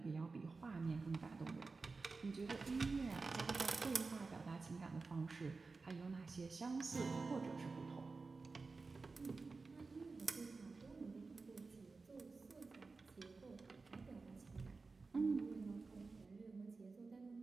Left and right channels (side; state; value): left; quieter; 4.1 dB